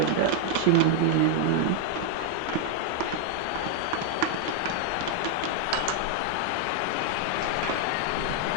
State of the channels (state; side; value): different; both; correlation 0.00